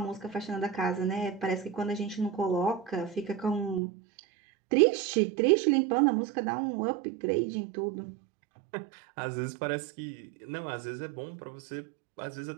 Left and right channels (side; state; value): left; drops out; at 3.8 s